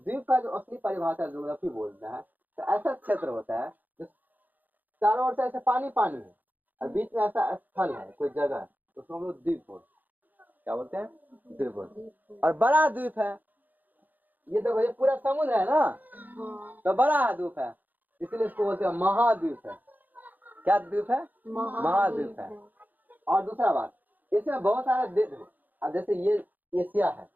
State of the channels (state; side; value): late; left; 0.084 ms